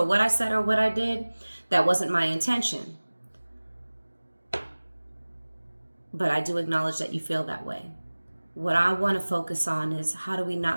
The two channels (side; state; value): both; inverted; correlation -1.00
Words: what I said or what I did. That wasn't my intention. But I do acknowledge that you feel that way. What I want to focus on is how do we